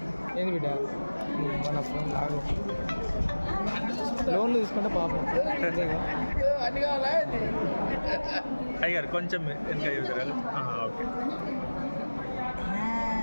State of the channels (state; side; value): inverted; both; correlation -1.00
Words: ఏంది బిడ్డ మన ఫోన్ లాగు లోన్లు తీసుకుంటే పాపం అయ్యారు కొంచెం వెనక చూసారు ఓకే